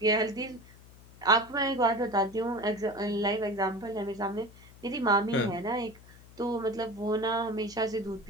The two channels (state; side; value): noise; left; hum, 22 dB below the sound